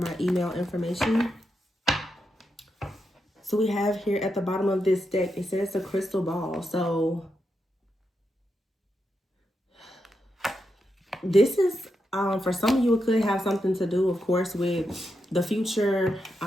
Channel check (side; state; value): both; normal; correlation 0.85